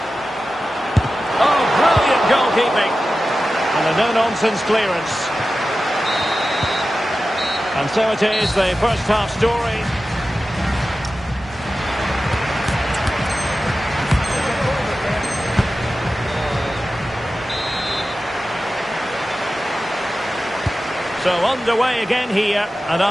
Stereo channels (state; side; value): normal; both; correlation 0.94